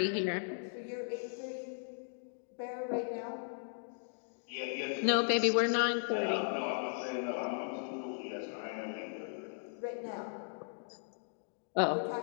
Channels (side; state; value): right; silent; digital silence